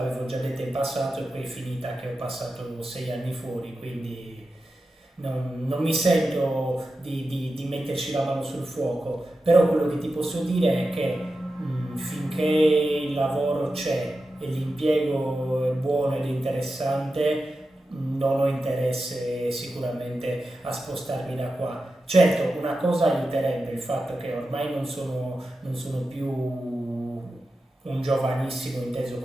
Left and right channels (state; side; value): normal; both; correlation 0.91